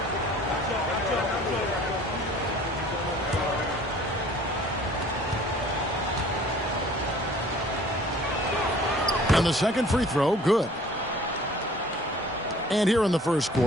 And the second free throw, good. And here in the first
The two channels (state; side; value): normal; both; correlation 0.51